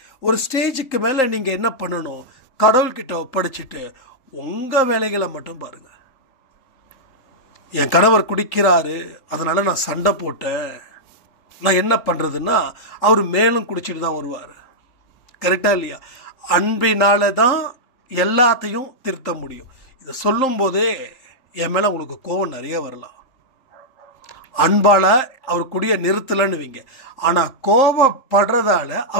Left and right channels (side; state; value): right; late; 3.8 ms